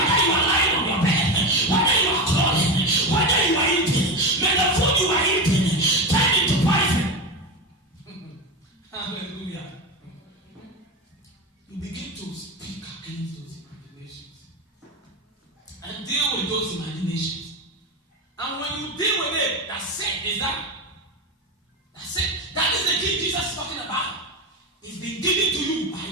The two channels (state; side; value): normal; both; correlation 0.18